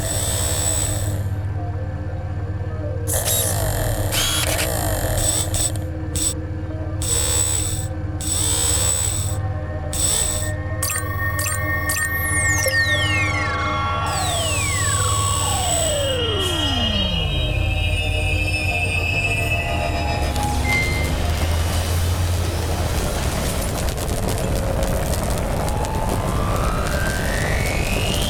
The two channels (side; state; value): both; identical; correlation 1.00